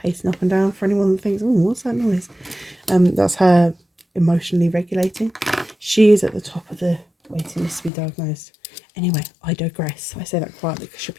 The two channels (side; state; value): right; drops out; at 7.9 s